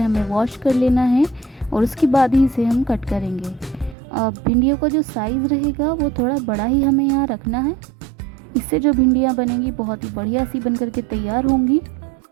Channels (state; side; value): drops out; left; at 4.0 s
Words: वॉश कर लेना है और उसके बाद ही इसे हम कट करेंगे। भिंडियों का जो साइज़ रहेगा वो थोड़ा बड़ा ही हमें यहाँ रखना है। इससे जो भिंडियाँ बनेंगी बहुत ही बढ़िया सी बन करके तैयार होंगी।